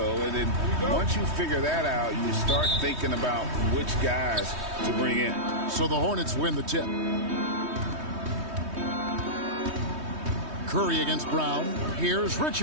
And then once you figure that out, you start thinking about which guys to bring in. So the Hornets win the tip. Curry against Brown. Here's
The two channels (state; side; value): late; left; 3.2 ms